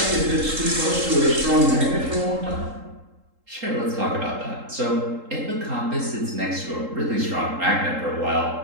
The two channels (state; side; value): late; left; 3.8 ms